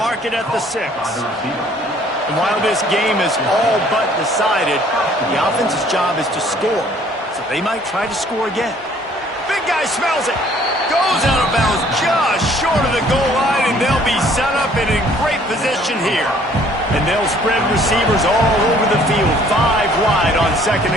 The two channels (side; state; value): both; normal; correlation 0.58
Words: mark it at the 6. And while this game is all but decided, the offense's job is to score. So they might try to score again. Big guy smells it. Goes out of bounds just short of the goal line, and they'll be set up and in great position here. And they'll spread receivers all over the field, 5 wide on 2nd